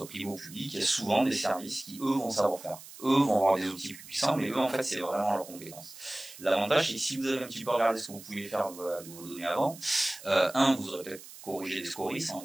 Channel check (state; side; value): noise; right; hiss, 17 dB below the sound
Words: privées ou publiques, il y a souvent des services qui, eux, vont savoir faire. Eux vont avoir des outils plus puissants, mais eux, en fait, c'est vraiment leur compétence. L'avantage, c'est que si vous avez un petit peu regardé ce que vous pouviez faire avec vos données avant, vous aurez peut-être corrigé des scories. On